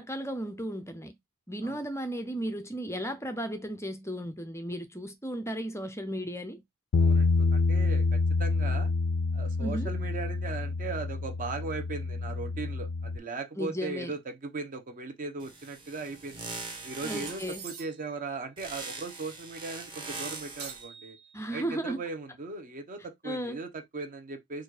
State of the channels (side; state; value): both; normal; correlation 0.64